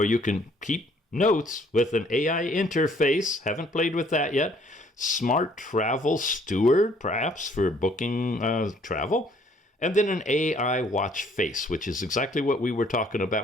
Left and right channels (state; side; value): normal; both; correlation 0.61